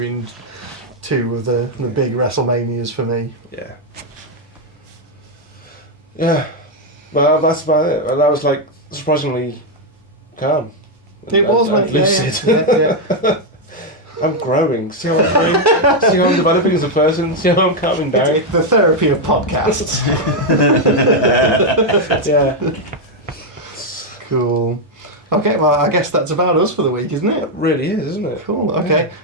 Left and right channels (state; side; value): normal; both; correlation 0.01